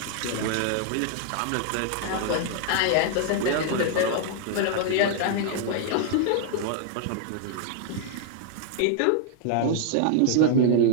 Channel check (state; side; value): different; both; correlation 0.00